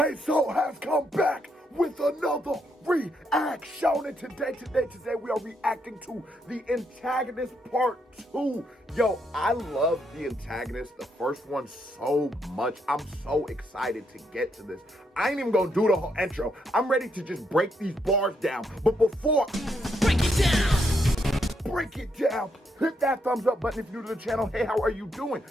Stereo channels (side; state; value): both; normal; correlation 0.77